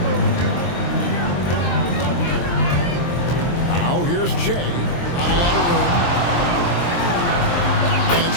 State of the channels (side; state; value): right; late; 23 ms